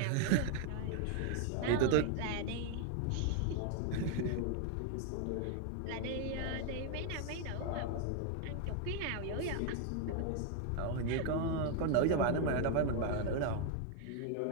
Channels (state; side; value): different; both; correlation 0.00